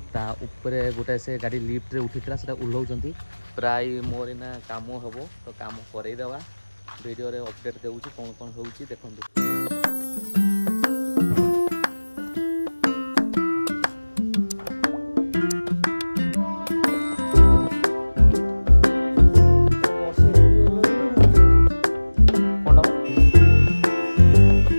ता ऊपर गोटे से गाड़ी लिफ्ट रे उठी से ओह्लाउंट प्राय मोर ना काम हम तो काम करईदेवा वीडियो रे अपडेट देउची कौन कौन होउची देखंतु।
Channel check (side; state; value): both; inverted; correlation -1.00